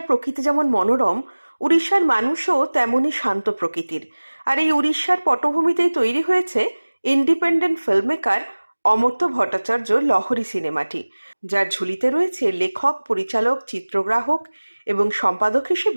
প্রকৃতি যেমন মনোরম, উড়িষ্যার মানুষও তেমনই শান্ত প্রকৃতির। আর এই উড়িষ্যার পটভূমিতেই তৈরি হয়েছে ইন্ডিপেন্ডেন্ট ফিল্মমেকার অমর্ত্য ভট্টাচার্যর লহরী সিনেমাটি, যার ঝুলিতে রয়েছে লেখক, পরিচালক, চিত্রগ্রাহক এবং সম্পাদক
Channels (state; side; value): inverted; both; correlation -1.00